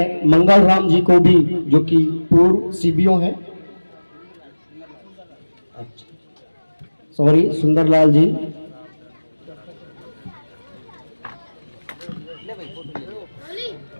मंगल राम जी को भी, जो कि पूर्व सीबीओ हैं, सॉरी सुंदरलाल जी,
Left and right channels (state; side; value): inverted; both; correlation -1.00